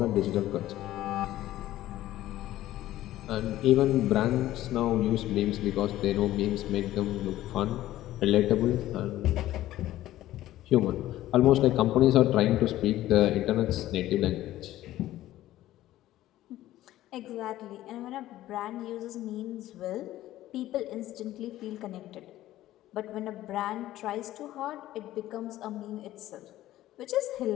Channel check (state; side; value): quieter; right; 14.5 dB